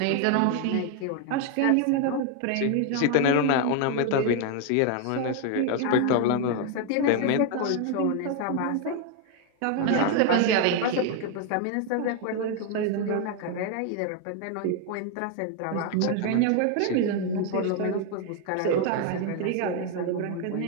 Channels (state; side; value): different; both; correlation 0.01